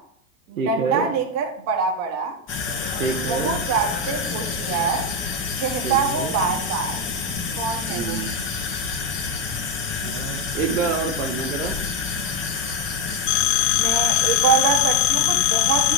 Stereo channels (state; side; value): normal; both; correlation 0.06